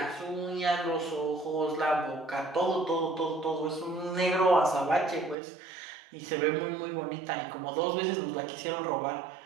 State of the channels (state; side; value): drops out; left; at 5.4 s